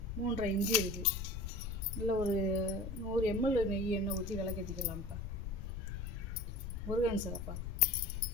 3.5 இன்ச்சு இருக்குது. இல்லை ஒரு 100 ml நெய் எண்ணெய் ஊற்றி விளக்கேற்றிக்கலாம்ப்பா. முருகன் சிறப்பா.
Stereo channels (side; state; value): left; noise; rumble, 6 dB below the sound